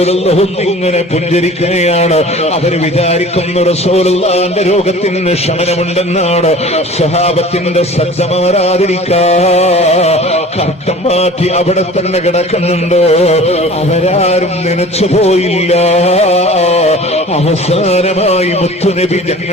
ഇങ്ങനെ പുഞ്ചിരിക്കുകയാണ്. അവർ വിചാരിക്കുന്നു റസൂലുള്ളാഹിന്റെ രോഗത്തിന് ശമനമുണ്ടെന്നാണ്. സ്വഹാബത്തിന്റെ ശ്രദ്ധ മാറാതിരിക്കാ കർട്ടൻ മാറ്റി അവിടെ തന്നെ കിടക്കുന്നുണ്ട്. അവരാരും നനച്ചു പോയില്ല. അവസാനമായി മുത്തുനബി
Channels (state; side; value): normal; both; correlation 0.43